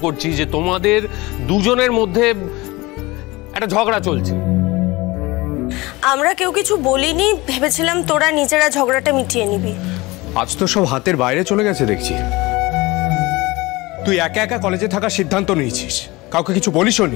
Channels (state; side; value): quieter; right; 21.8 dB